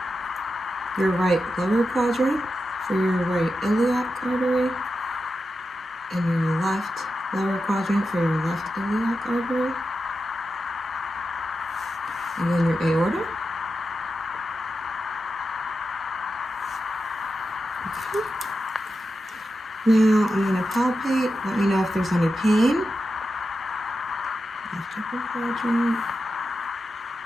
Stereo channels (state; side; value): normal; both; correlation 0.90